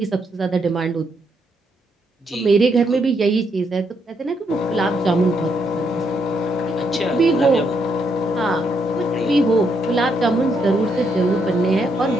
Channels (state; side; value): normal; both; correlation 0.76